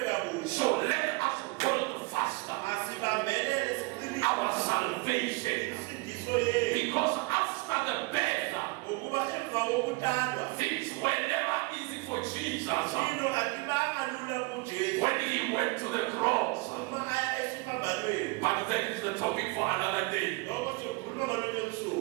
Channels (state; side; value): quieter; left; 25.3 dB